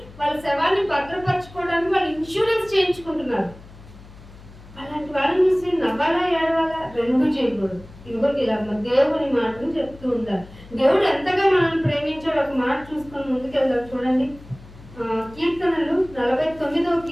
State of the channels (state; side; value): noise; left; hum, 20 dB below the sound